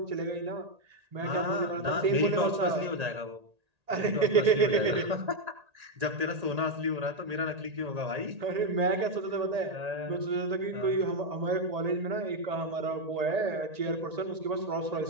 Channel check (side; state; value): left; late; 1.8 ms